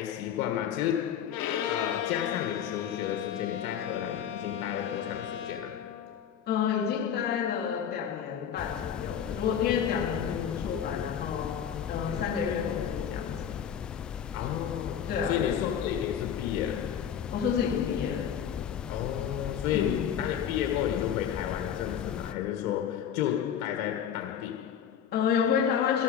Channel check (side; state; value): right; quieter; 8.7 dB